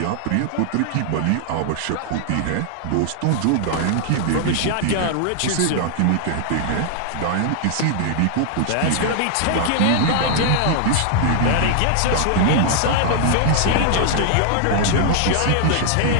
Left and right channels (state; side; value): different; both; correlation -0.01